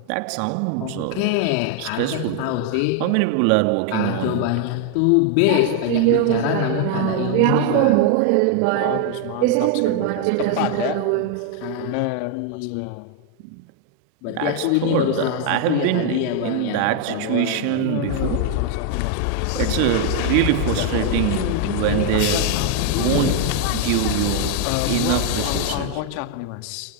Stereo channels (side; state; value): both; different; correlation 0.00